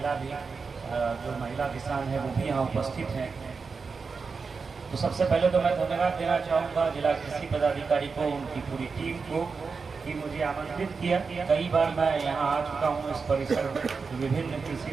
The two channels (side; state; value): left; quieter; 4.9 dB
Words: भी, जो महिला किसान हैं वो भी यहाँ उपस्थित हैं। तो सबसे पहले तो मैं धन्यवाद देना चाहूँगा जिला कृषि पदाधिकारी को, उनकी पूरी टीम को कि मुझे आमंत्रित किया। कई बार मैं यहाँ आ चुका हूँ इस परिसर में। विभिन्न